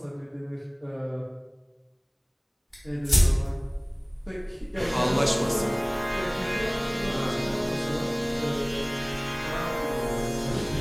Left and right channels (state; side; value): identical; both; correlation 1.00